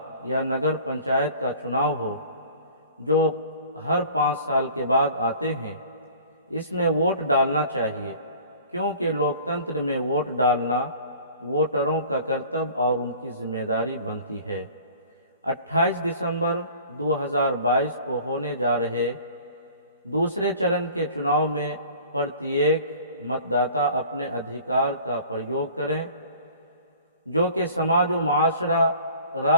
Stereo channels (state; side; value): inverted; both; correlation -0.47